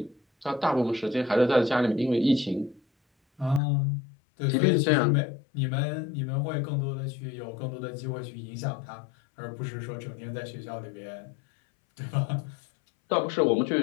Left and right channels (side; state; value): right; drops out; at 3.6 s